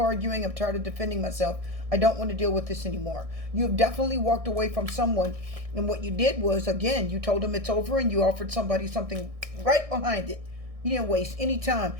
I'm tired of defending myself. I don't want to deal with this anymore. You have definitely walked away from someone. And what you did was, again, you told them it's over and you offered somebody something right behind it. You didn't waste any time.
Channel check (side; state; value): left; late; 1.6 ms